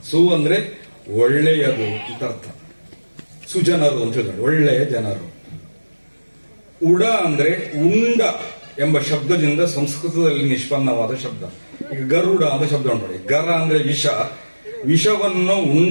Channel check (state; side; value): inverted; both; correlation -1.00